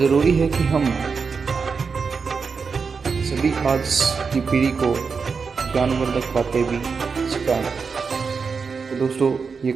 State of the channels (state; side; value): quieter; left; 5.3 dB